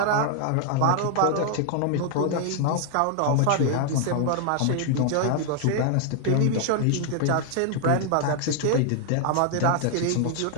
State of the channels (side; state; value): both; different; correlation 0.00